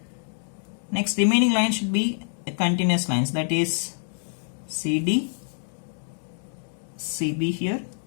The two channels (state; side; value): silent; right; digital silence